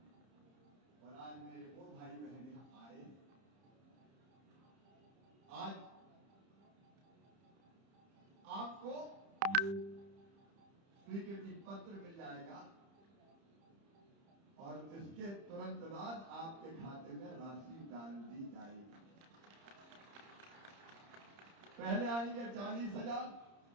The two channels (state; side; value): late; left; 30 ms